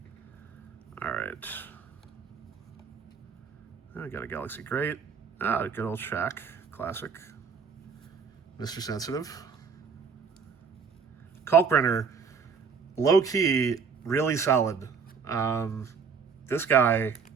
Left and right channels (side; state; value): left; quieter; 5.9 dB